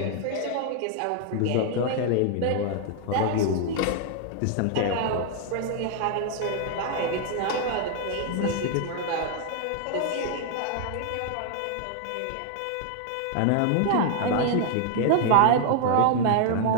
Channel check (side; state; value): both; different; correlation 0.00